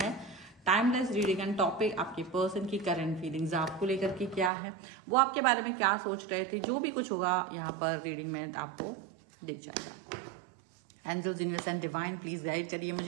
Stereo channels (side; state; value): left; drops out; at 4.5 s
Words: है, टाइमलेस रीडिंग एंड टॉपिक आपके पर्सन की करंट फीलिंग्स आपको लेकर के क्या है, वो आपके बारे में क्या सोच रहे थे, जो भी कुछ होगा यहाँ पर रीडिंग में आपको दिख जाएगा। Angels, universe and divine please guide करिए